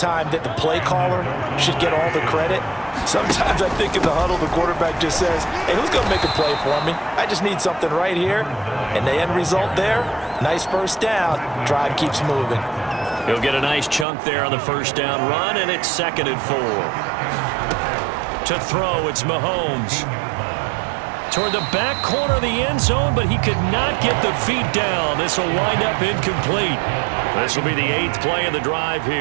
that the play caller should get all the credit. Sometimes I think in the huddle, the quarterback just says, hey, who's going to make a play for me? I just need something right here. And the end result there, nice first down. Drive keeps moving. He'll get a nice chunk there on the first down run, and it's 2nd and 4. To throw, it's Mahomes. Toward the back corner of the end zone, but he could not get the feet down. This will wind up incomplete. This will be the 8th play of the drive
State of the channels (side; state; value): left; drops out; at 14.1 s